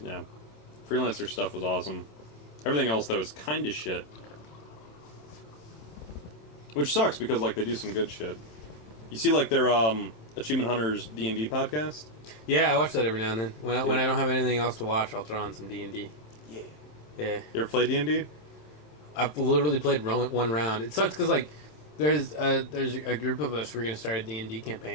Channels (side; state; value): right; late; 27 ms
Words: Yeah. Freelancer stuff was awesome. Everything else, though, is kind of shit. Which sucks, because, like, they do some good shit. You see, like, their, Achievement Hunters D&D podcast? Yeah, I watch that every now and then. When I don't have anything else to watch, I'll throw on some D&D. Yeah. Yeah. You ever play D&D? I've literally played one round. It sucks, because, like, there's a group of us, we're going to start a D&D